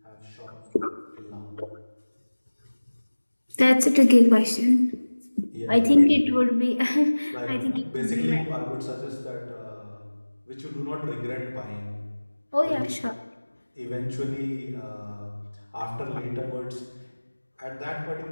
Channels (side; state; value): both; inverted; correlation -1.00